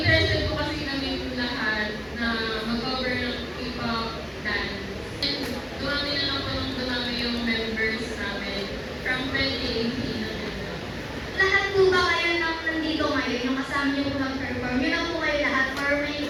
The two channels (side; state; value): both; identical; correlation 1.00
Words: po kasi kami lahat na mag-cover ng K-pop dance. And dumami na lang po nung dumami yung members namin from 2018 na gano'n. Lahat po ba kayo nang nandito ngayon, yung kasama nyo po nag-perform? Yun lang po kayo lahat or may